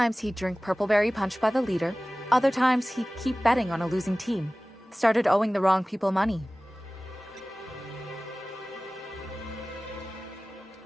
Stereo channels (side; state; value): both; normal; correlation 0.98